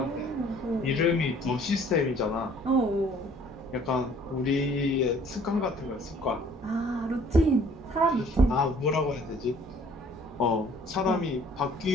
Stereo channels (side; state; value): both; normal; correlation 0.56